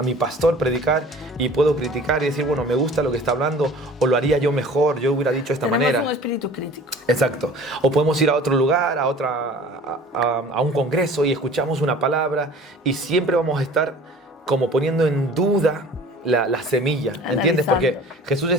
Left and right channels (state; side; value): normal; both; correlation 0.45